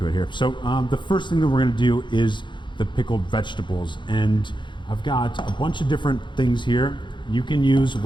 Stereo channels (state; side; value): late; right; 0.23 ms